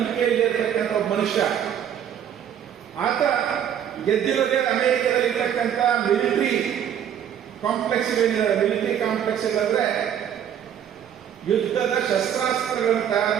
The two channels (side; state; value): left; quieter; 9.4 dB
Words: ಇರತಕ್ಕಂಥ ಒಬ್ಬ ಮನುಷ್ಯ. ಆತ ಗೆದ್ದಿರೋದೇ ಅಮೆರಿಕದಲ್ಲಿ ಇರ್ತಕ್ಕಂಥ ಮಿಲಿಟರಿ ಕಾಂಪ್ಲೆಕ್ಸ್ ಅಂದ್ರೆ ಯುದ್ಧದ ಶಸ್ತ್ರಾಸ್ತ್ರಗಳನ್ನು ತಯಾರು